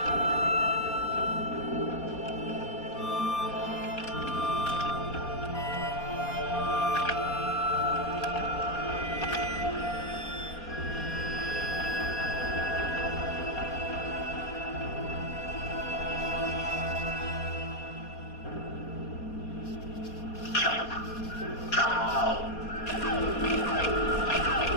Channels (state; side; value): late; right; 4.2 ms